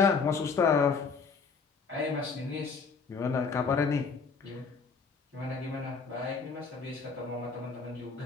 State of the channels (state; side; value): quieter; right; 5.0 dB